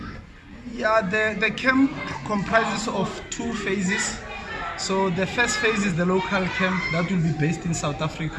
Yeah, the camp comprises of 2 phases. So the first phase is the local camp that will be based in South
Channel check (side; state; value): both; identical; correlation 1.00